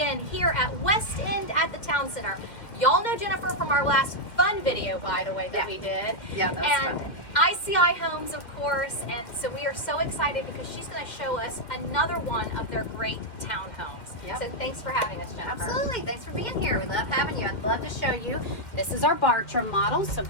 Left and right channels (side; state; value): right; late; 2.1 ms